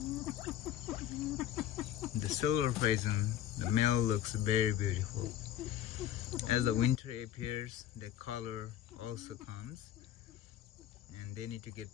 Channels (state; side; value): quieter; right; 11.6 dB